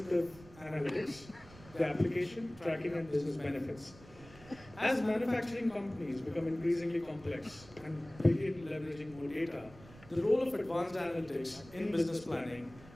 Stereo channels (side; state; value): right; noise; rumble, 20 dB below the sound